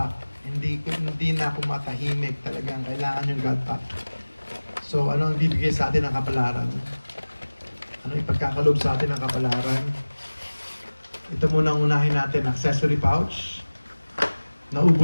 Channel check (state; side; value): inverted; both; correlation -1.00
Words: Hindi na ako matahimik. Talagang kailangan yung God Pack. So, ano ang bibigay sa atin ng kapalaran? Ano ipagkakalob sa atin ng kapalaran? Ito muna ang unahin natin, accessory pouch.